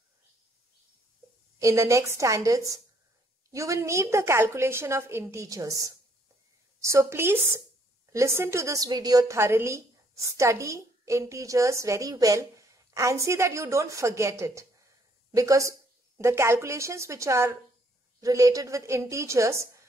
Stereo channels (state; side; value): normal; both; correlation 0.67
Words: in the next standards, you will need the calculation of integers. So please listen to this video thoroughly, study integers very well and see that you don't forget it, because the calculations which are related with integers,